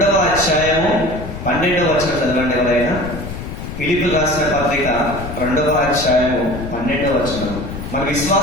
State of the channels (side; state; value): left; noise; rumble, 9 dB below the sound